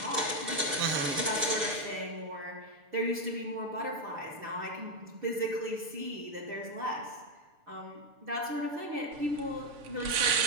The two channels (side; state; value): left; late; 6.8 ms